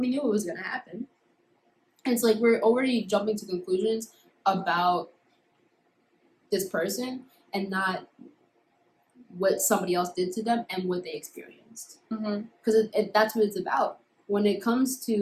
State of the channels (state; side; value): identical; both; correlation 1.00